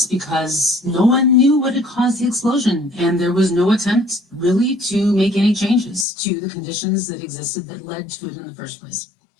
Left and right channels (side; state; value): right; drops out; at 6.1 s